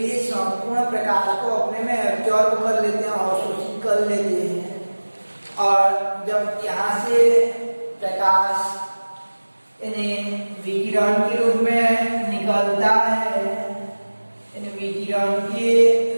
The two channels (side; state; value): both; inverted; correlation -1.00